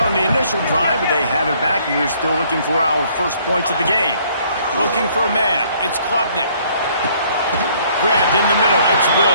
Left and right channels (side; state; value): both; inverted; correlation -0.62